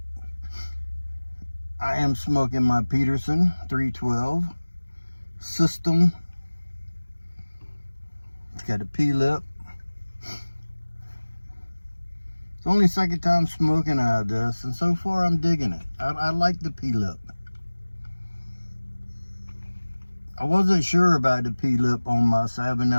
I am smoking my Peterson 312 system. It's got a P-lip. It's only second time smoking out of this, and so far I'm digging it. I like the P-lip. I wasn't sure about the P-lip on my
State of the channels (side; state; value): both; inverted; correlation -1.00